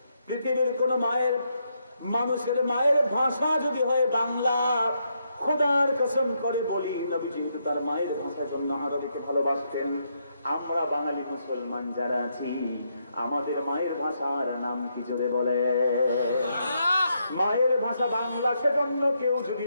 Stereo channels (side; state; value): both; inverted; correlation -0.79